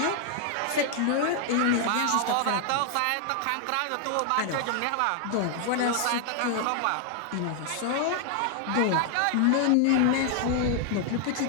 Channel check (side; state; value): both; different; correlation 0.00